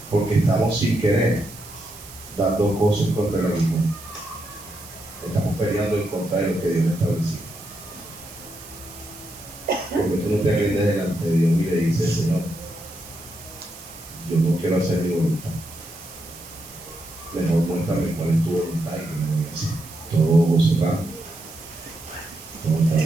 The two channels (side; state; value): right; noise; hiss, 17 dB below the sound